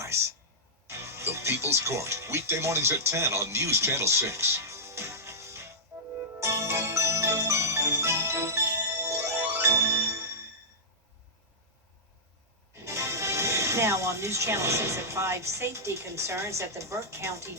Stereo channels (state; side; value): normal; both; correlation -0.13